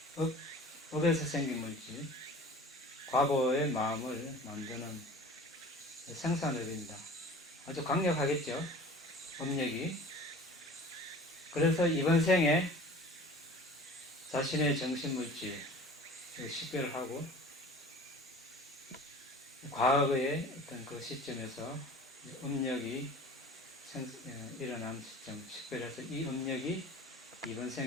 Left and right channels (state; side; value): normal; both; correlation 0.42